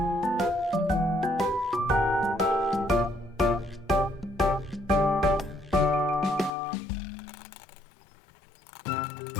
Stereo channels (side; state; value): right; drops out; at 6.5 s